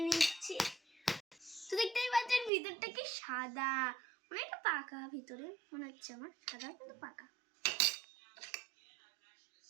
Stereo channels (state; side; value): drops out; left; at 2.5 s